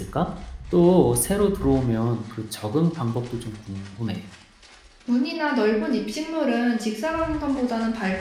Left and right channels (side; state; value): both; identical; correlation 1.00